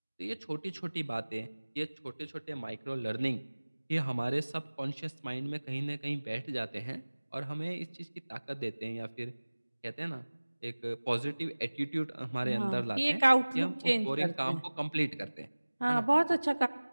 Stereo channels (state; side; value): inverted; both; correlation -1.00